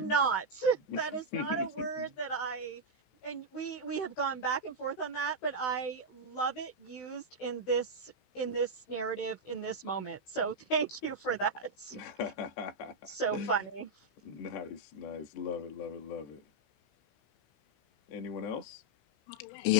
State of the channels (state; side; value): late; right; 16 ms